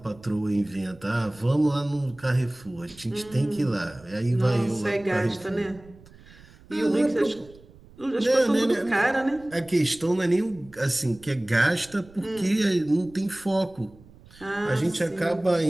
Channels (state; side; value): noise; right; rumble, 23 dB below the sound